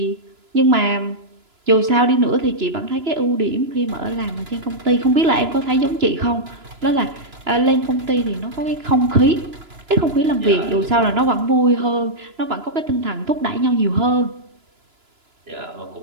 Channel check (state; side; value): late; left; 2.9 ms